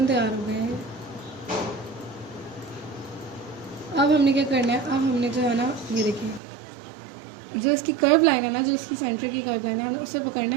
तैयार हो गए हैं। अब हमने क्या करना है, अब हमने जो है ना, ये देखिए जो इसकी कर्व लाइन है ना, जो इसकी सेंटर की कर्व लाइन है, उसे पकड़ना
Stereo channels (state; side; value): drops out; left; at 6.4 s